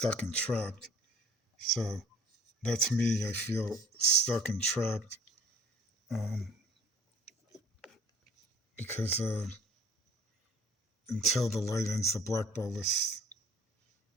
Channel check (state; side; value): normal; both; correlation 0.51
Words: and trapped. So that's me. I feel stuck and trapped um, because until the light ends the black ball list,